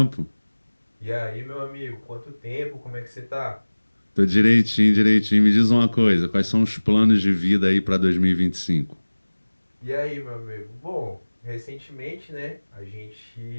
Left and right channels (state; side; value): inverted; both; correlation -1.00